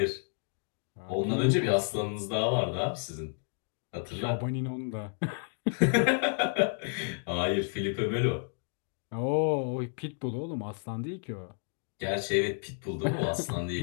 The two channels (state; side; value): silent; right; 56 dB below the other